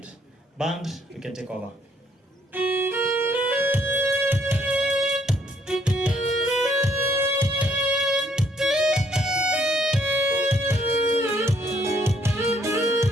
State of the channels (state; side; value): normal; both; correlation 0.68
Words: Band, you can take over.